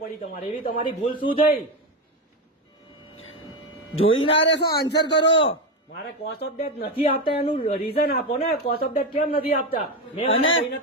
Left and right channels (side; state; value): both; normal; correlation 0.13